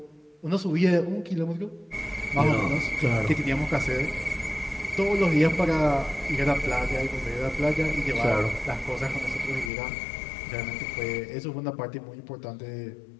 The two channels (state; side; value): drops out; right; at 9.7 s